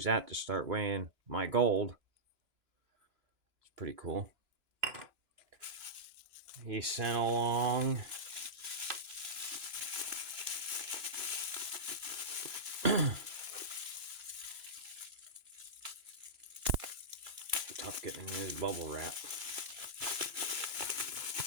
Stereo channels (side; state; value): left; late; 2.9 ms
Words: that to start weighing my gold. It's pretty cool. He sent along tough getting in his bubble wrap.